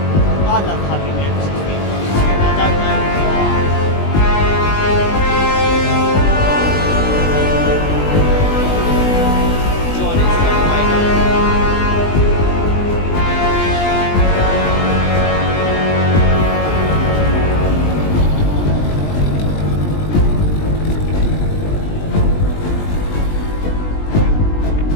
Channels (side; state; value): right; late; 20 ms